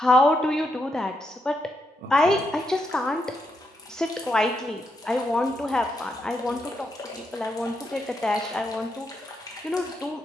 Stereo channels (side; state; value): both; normal; correlation 0.81